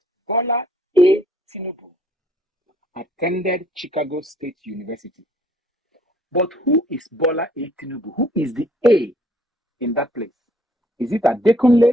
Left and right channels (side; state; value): both; normal; correlation 0.62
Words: Bola A. Tinubu attended Chicago State University. But who is Bola A. Tinubu? Who is the A in that place? Is it